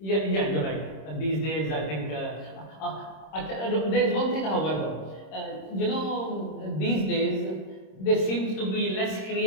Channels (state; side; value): late; right; 26 ms